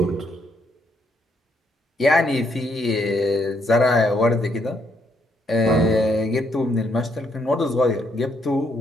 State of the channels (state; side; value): normal; both; correlation 0.74